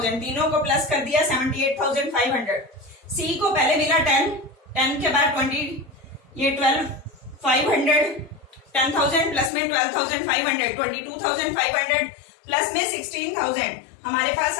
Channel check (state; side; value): drops out; right; at 9.5 s